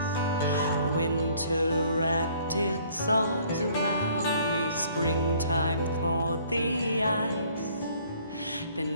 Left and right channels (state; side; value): inverted; both; correlation -0.59